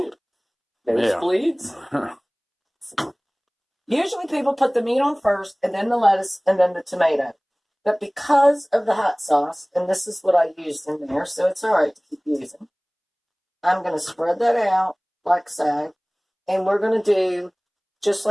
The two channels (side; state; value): both; identical; correlation 1.00